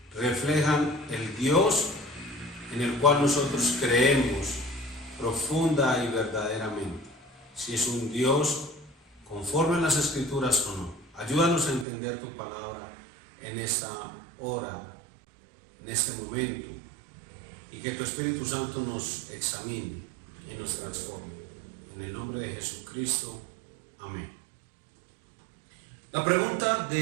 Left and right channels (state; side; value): drops out; left; at 11.9 s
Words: reflejan el Dios en el cual nosotros creemos profunda y verdaderamente. Si es un Dios conforme a las Escrituras o no. Ayúdanos a entender tu palabra en esta hora, en este momento, y que tu Espíritu Santo nos examine y nos transforme. En el nombre de Jesucristo. Amén. La pregunta